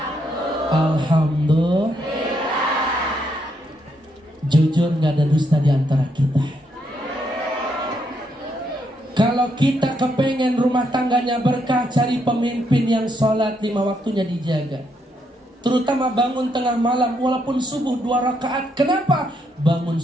Alhamdulillah. Jujur gak ada dusta di antara kita. Kalau kita kepengen rumah tangganya berkah, cari pemimpin yang sholat 5 waktunya dijaga. Terutama bangun tengah malam walaupun subuh 2 rakaat. Kenapa? Bangun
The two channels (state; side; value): normal; both; correlation 0.76